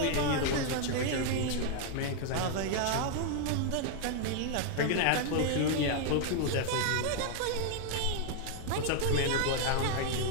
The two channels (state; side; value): different; both; correlation 0.00